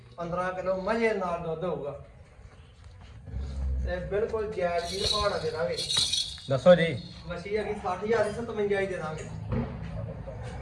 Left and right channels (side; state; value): both; identical; correlation 1.00